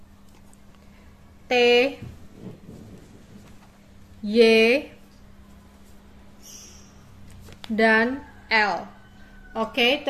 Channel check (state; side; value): identical; both; correlation 1.00